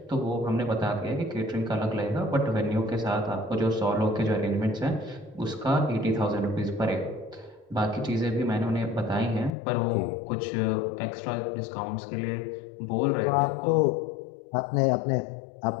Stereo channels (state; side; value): drops out; right; at 9.5 s